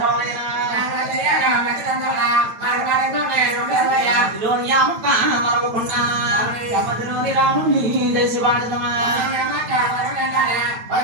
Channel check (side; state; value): left; late; 9.2 ms